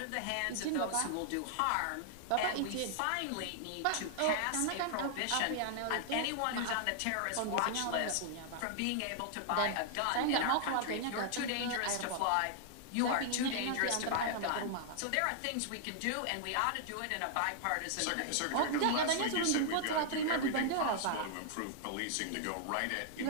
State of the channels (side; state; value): both; different; correlation -0.01